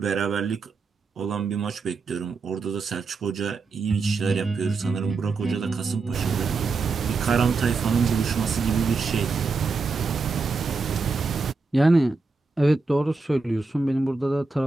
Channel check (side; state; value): left; quieter; 4.1 dB